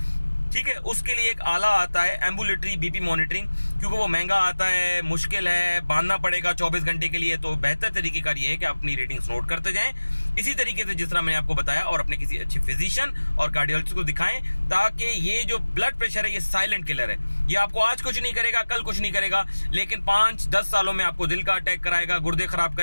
ठीक है। उसके लिए एक आला आता है एम्बुलेटरी बीपी मॉनिटरिंग, क्योंकि वो महंगा आता है, मुश्किल है, बांधना पड़ेगा 24 घंटे के लिए। तो बेहतर तरीकेकार ये है कि आप अपनी रीडिंग्स नोट करते जाएं इसी तरीके से जिस तरह मैंने आपको बताया, और अपने किसी अच्छे फिजिशियन और कार्डियोलॉजिस्ट को दिखाएं, ताकि ये जो ब्लड प्रेशर है ये साइलेंट किलर है। ये आपको आज कुछ नहीं करेगा, कल कुछ नहीं करेगा, लेकिन 5-10 सालों में आपको दिल का अटैक कराएगा, गुर्दे खराब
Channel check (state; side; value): inverted; both; correlation -1.00